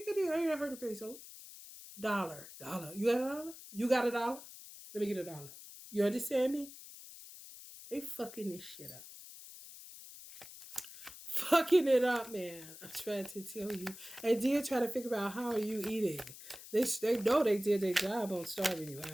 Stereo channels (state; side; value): noise; left; hiss, 15 dB below the sound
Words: I heard of peso. Dollar, you got a dollar? You got a dollar? Let me get a dollar. You understand me? They fucking this shit up. Fucking it up, man. I'm trying to tell you. And then try to figure out how are you eating. They know they did their job on starving you